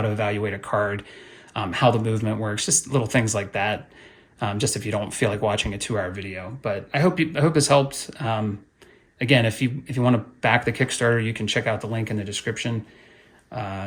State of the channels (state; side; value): identical; both; correlation 1.00